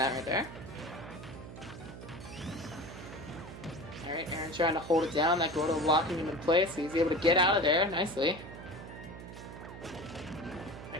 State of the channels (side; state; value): right; noise; hum, 12 dB below the sound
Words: there. Alright, Aaron trying to hold it down. That Gordo locking him in place, so he's able to get out of there nicely.